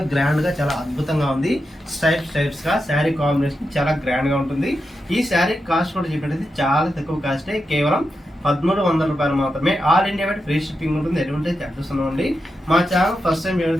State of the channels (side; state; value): both; normal; correlation 0.88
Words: గ్రాండ్ గా, చాలా అద్భుతంగా ఉంది. స్టైప్స్ గా శారీ కాంబినేషన్ చాలా గ్రాండ్ గా ఉంటుంది. ఈ శారీ కాస్ట్ కూడా చెప్పినట్టు చాలా తక్కువ కాస్టే, కేవలం 1300 రూపాయలు మాత్రమే. All India wide free shipping ఉంటుంది, ఎటువంటి చార్జెస్ ఉండవండి. మా ఛానల్ ఫస్ట్ టైం